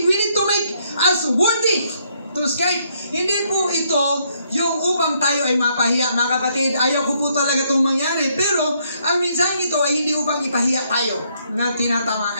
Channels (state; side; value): inverted; both; correlation -0.72